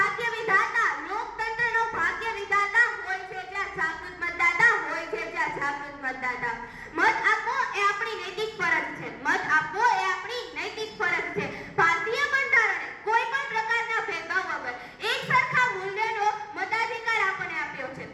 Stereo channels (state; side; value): identical; both; correlation 1.00